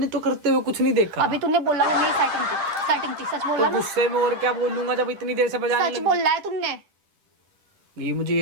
तो करते हुए कुछ नहीं देखा। अभी तूने बोला वो मेरी सेटिंग थी, सच बोला तो ना? गुस्से में और क्या बोलूंगा जब इतनी देर से बजाने सच लगी? बोल रहा है तुमने। ये मुझे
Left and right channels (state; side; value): late; left; 10 ms